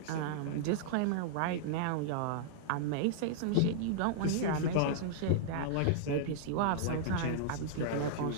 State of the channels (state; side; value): different; both; correlation -0.01